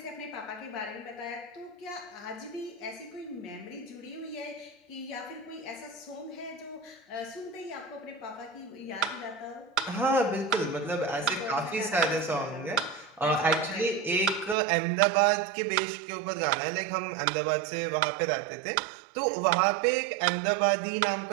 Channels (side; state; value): left; drops out; at 14.6 s